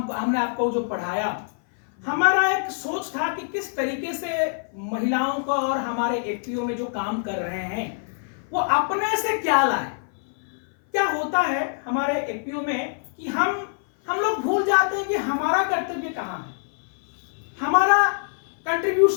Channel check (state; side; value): silent; right; 58 dB below the other